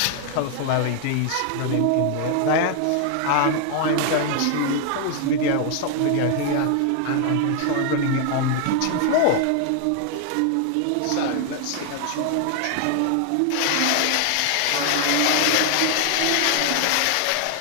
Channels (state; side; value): different; both; correlation 0.00